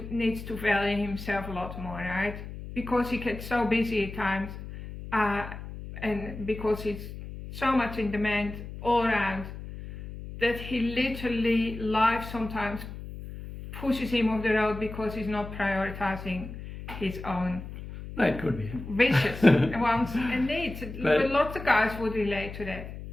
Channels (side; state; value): left; noise; hum, 11 dB below the sound